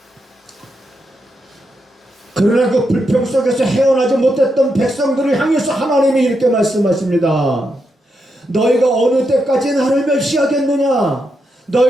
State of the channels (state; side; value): normal; both; correlation 0.83